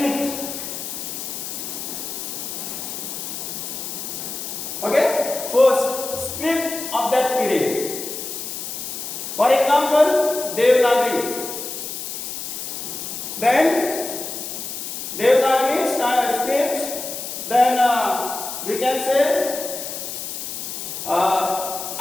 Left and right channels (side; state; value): left; noise; hiss, 6 dB below the sound